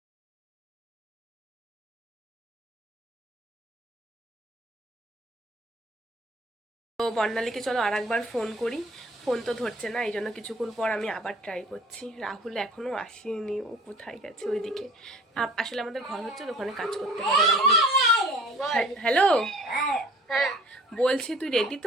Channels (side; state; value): both; normal; correlation 0.48